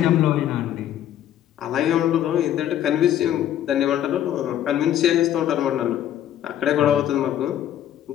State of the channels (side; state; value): right; quieter; 11.2 dB